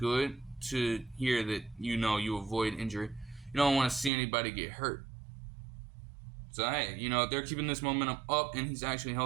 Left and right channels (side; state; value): left; drops out; at 4.1 s